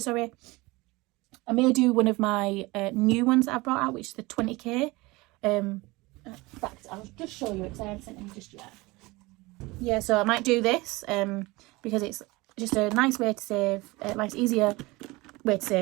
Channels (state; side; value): quieter; left; 22.6 dB